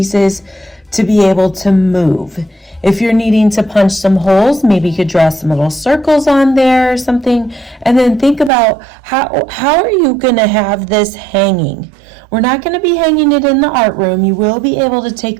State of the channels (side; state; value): left; drops out; at 8.5 s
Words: to be able to move. If you're needing to punch some holes, maybe you could draw some little circles on there or something, and then think about how are you going to have this hanging. We're not going to be hanging it in the art room. You will be able to take